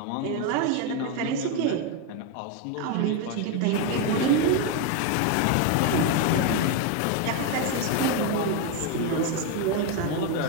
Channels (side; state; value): both; different; correlation 0.02